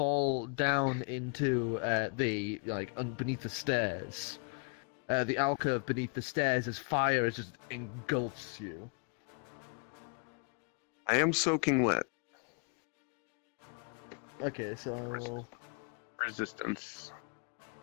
down into beneath the stairs. The alcove beneath the stairs as fire just engulfs you. I am soaking wet. Okay, so... Resistance.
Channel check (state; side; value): quieter; right; 37.5 dB